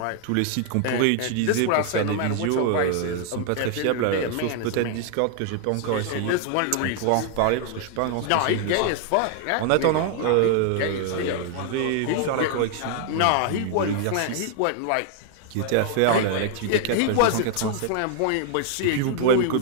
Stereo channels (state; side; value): different; both; correlation 0.00